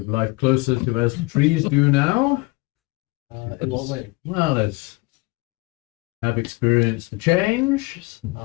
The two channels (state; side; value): quieter; right; 24.6 dB